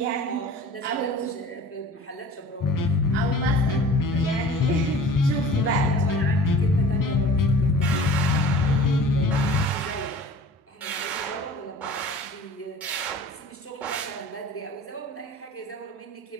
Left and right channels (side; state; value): both; normal; correlation 0.43